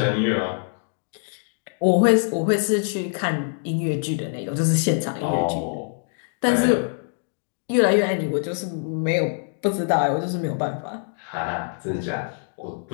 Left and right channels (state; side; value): silent; right; digital silence